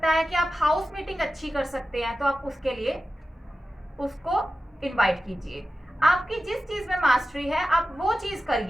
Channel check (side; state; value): both; normal; correlation 0.93